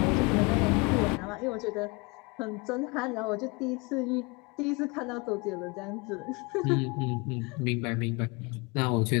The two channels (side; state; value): right; quieter; 27.6 dB